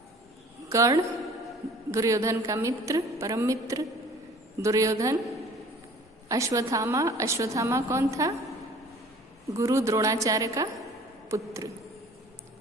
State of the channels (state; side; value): normal; both; correlation 0.49